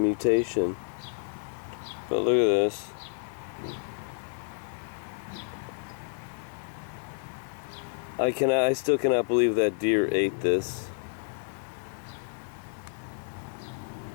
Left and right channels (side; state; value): right; silent; digital silence